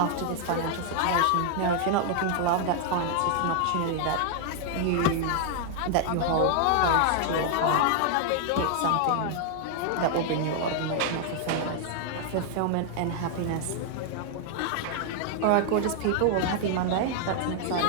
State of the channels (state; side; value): different; both; correlation 0.00